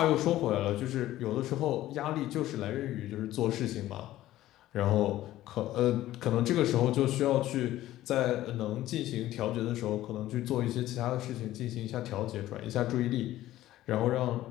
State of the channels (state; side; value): quieter; right; 14.7 dB